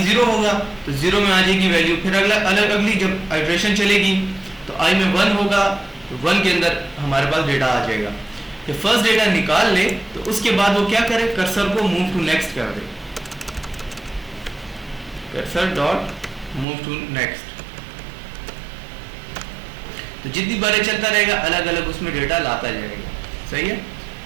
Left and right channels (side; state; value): left; drops out; at 16.7 s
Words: 0 होगा तो 0 में आ जाएगी वैल्यू, फिर अगली जब आइट्रेशन चलेगी तो आई में 1 होगा तो 1 के अंदर हमारे पास डेटा आ जाएगा। जब फर्स्ट डेटा निकाल ले तो उसके बाद वो क्या करे, कर्सर को मूव टू नेक्स्ट कर दे, cursor dot move to next. तो जितनी बारें चलता रहेगा अलग अलग उसमें डेटा लाता जाएगा, सही है।